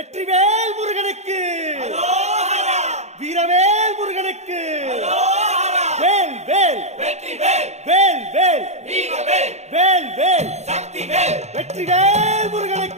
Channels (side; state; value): left; late; 0.32 ms